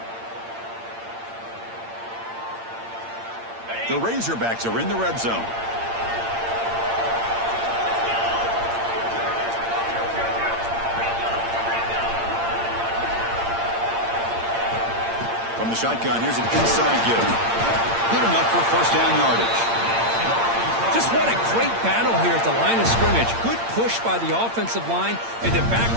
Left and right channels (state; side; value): late; left; 8.7 ms